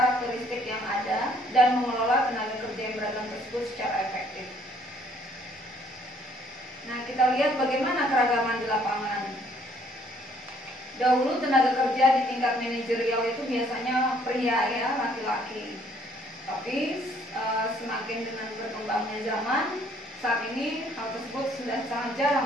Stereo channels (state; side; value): normal; both; correlation 0.63